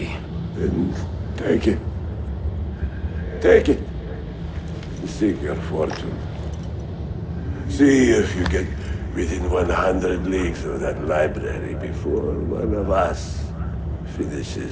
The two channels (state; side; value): identical; both; correlation 1.00